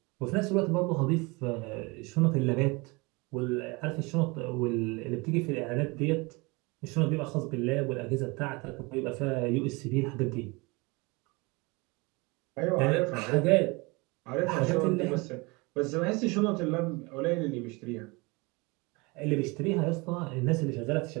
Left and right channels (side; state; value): left; quieter; 26.4 dB